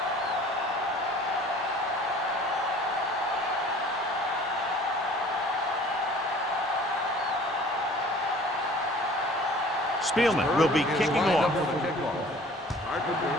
Spielman will be kicking off.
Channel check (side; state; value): both; normal; correlation 0.49